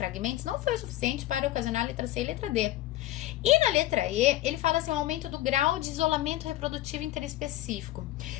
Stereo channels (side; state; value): right; quieter; 15.1 dB